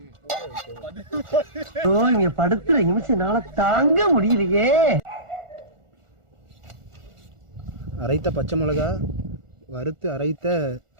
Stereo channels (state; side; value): late; left; 1.4 ms